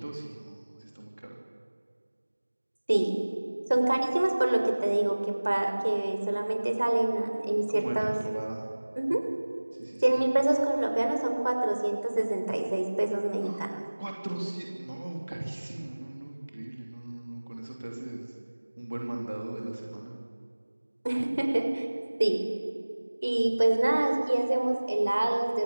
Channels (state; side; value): inverted; both; correlation -1.00